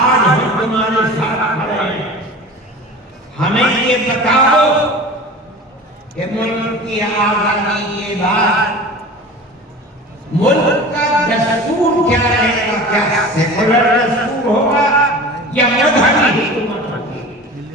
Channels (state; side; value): normal; both; correlation 0.37